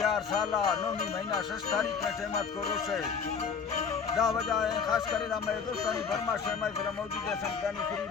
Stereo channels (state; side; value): quieter; right; 6.1 dB